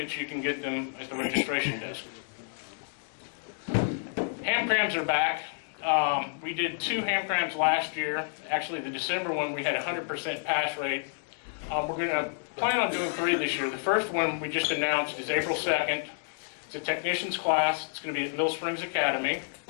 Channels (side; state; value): right; silent; digital silence